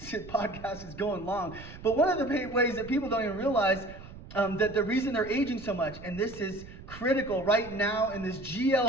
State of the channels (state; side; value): noise; right; rumble, 15 dB below the sound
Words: podcast is going long, but one of the ways that people don't even realize that the reason they're aging so much, and this is critical right now in this